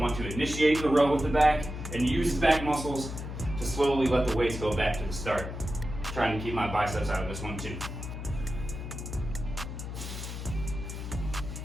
to initiate the row with the back and use the back muscles to slowly let the weights go back to the start. Trying to keep my biceps out of this one too.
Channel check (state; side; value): noise; left; hum, 7 dB below the sound